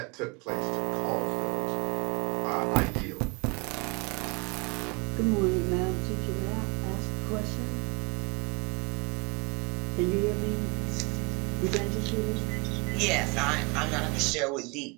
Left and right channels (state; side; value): quieter; left; 29.7 dB